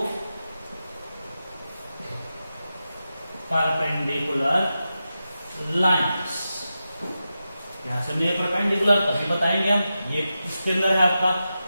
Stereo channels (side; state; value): both; inverted; correlation -0.91